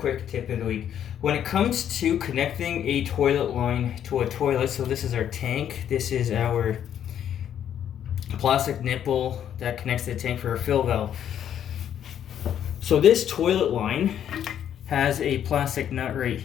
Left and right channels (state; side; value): quieter; right; 9.8 dB